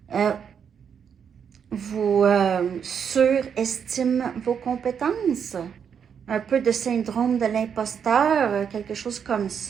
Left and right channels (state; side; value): quieter; left; 7.4 dB